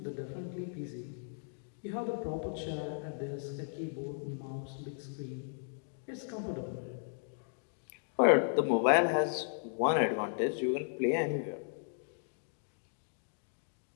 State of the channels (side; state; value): right; silent; digital silence